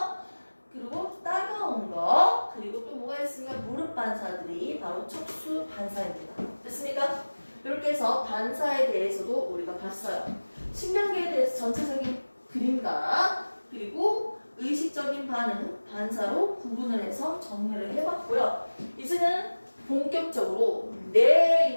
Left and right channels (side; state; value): both; inverted; correlation -1.00